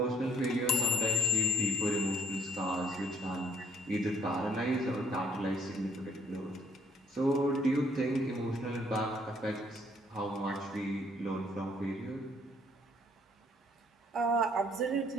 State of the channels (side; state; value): both; normal; correlation 0.62